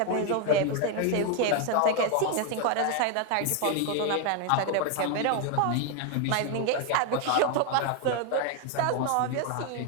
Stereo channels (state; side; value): different; both; correlation 0.01